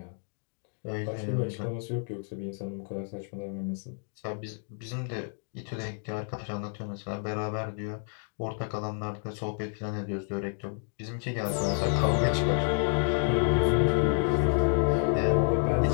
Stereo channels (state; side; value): silent; right; 58 dB below the other